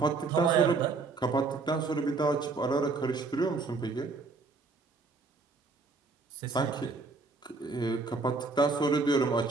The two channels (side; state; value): left; quieter; 4.0 dB